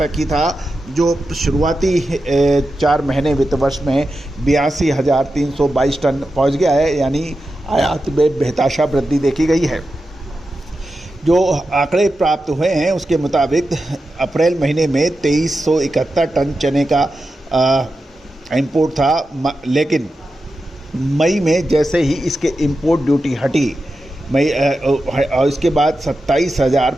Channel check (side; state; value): both; normal; correlation 0.90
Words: ही था, जो शुरुआती 4 महीने वित्त वर्ष में 82,322 टन पहुंच गया है, यानी आयात में बेतहाशा वृद्धि देखी गई है। जो आंकड़े प्राप्त हुए हैं उसके मुताबिक अप्रैल महीने में 2371 टन चने का इंपोर्ट था, लेकिन मई में जैसे ही इसके इंपोर्ट ड्यूटी हटी और इसके बाद